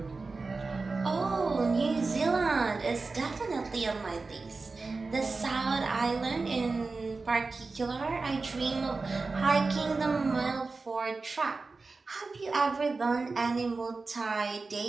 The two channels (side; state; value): left; quieter; 3.9 dB